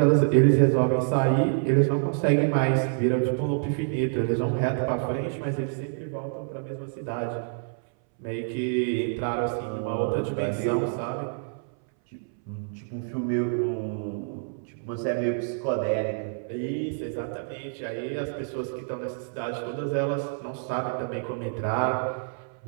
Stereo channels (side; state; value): left; silent; 60 dB below the other